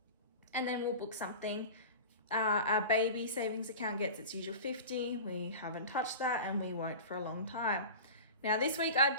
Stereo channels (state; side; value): inverted; both; correlation -0.33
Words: And then we'll book something. Our baby savings account gets its usual 50. We haven't touched that and we won't for a long time. Now this week I